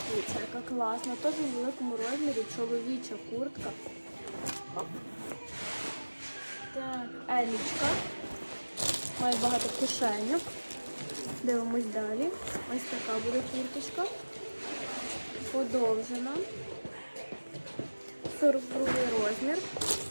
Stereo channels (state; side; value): inverted; both; correlation -1.00